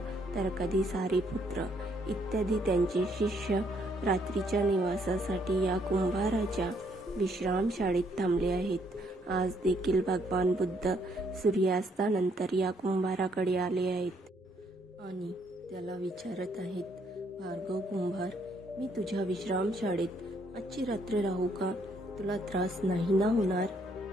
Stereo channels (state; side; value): normal; both; correlation 0.69